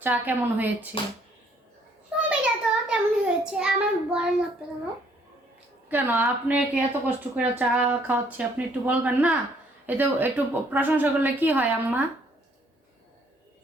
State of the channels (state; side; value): normal; both; correlation 0.64